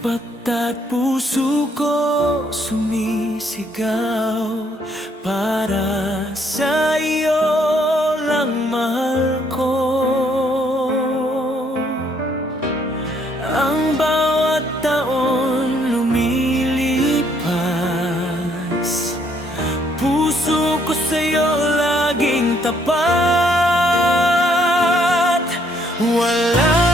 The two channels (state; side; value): normal; both; correlation 0.68